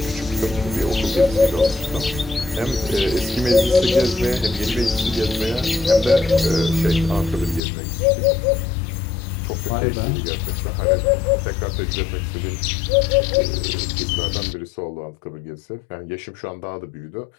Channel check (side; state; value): right; drops out; at 7.6 s